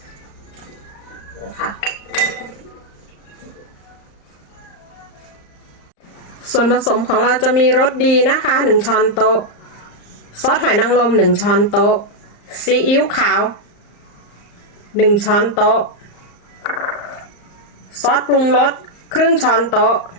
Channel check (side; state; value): right; late; 34 ms